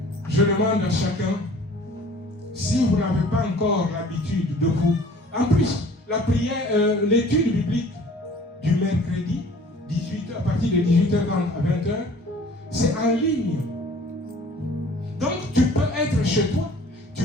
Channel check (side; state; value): both; normal; correlation 0.50